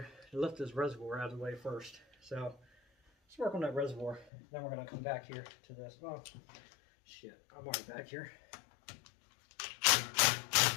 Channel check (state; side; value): drops out; right; at 4.3 s